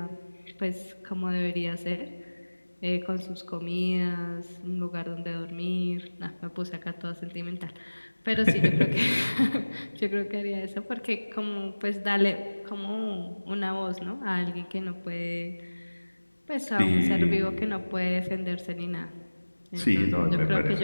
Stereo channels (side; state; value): both; inverted; correlation -1.00